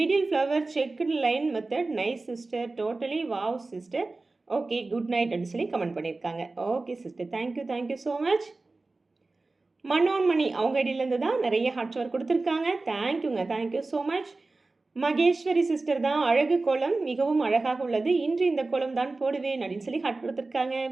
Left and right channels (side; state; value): left; quieter; 3.4 dB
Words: middle flower checked line method nice sister, totally wow sister, okay good night அப்படின்னு சொல்லி comment பண்ணியிருக்காங்க. Okay sister, thank you, thank you so much. Manonmani அவங்க ஐடியிலேருந்து தான் நிறைய heart shower கொடுத்துருக்காங்க. தேங்க்யூங்க, thank you so much. Maheswari sister தான் அழகு கோலம் மிகவும் அழகாக உள்ளது. இன்று இந்த கோலம் தான் போடுவேன் அப்படின்னு சொல்லி ஹார்ட் கொடுத்துருக்காங்க.